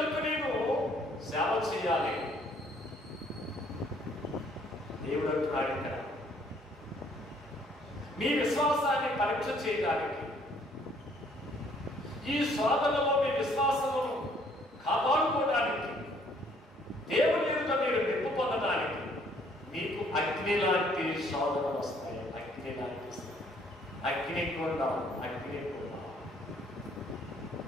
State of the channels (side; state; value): both; normal; correlation 0.63